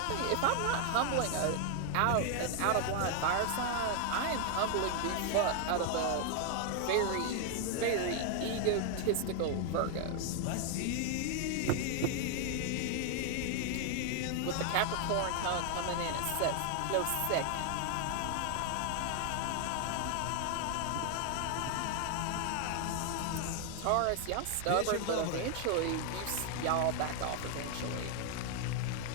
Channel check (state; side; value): different; both; correlation 0.00